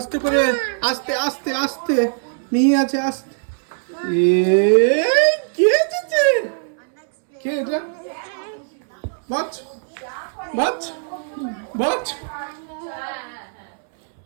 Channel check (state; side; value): silent; left; 65 dB below the other